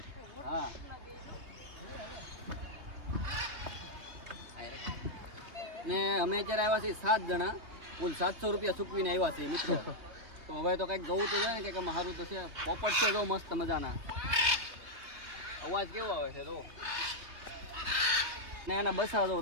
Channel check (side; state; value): left; late; 3.2 ms